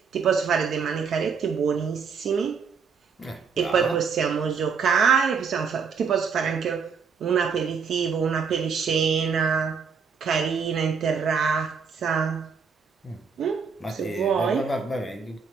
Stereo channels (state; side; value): quieter; left; 5.9 dB